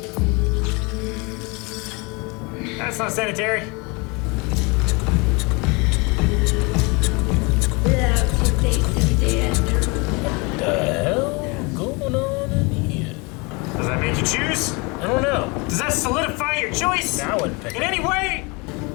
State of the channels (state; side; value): quieter; right; 28.5 dB